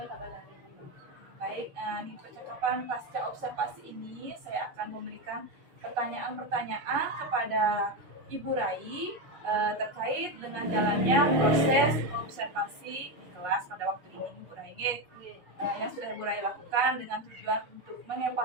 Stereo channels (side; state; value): left; late; 6.6 ms